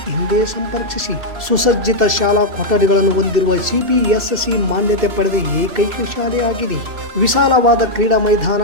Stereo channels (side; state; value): left; late; 2.7 ms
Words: ಹಿಂದೆ ಸಂಪರ್ಕಿಸಿ. ಸುಸಜ್ಜಿತ ಶಾಲಾ ಕೊಠಡಿಗಳನ್ನು ಹೊಂದಿರುವ CBSE ಮಾನ್ಯತೆ ಪಡೆದ ಏಕೈಕ ಶಾಲೆಯಾಗಿದೆ. ವಿಶಾಲವಾದ ಕ್ರೀಡಾ ಮೈದಾನ,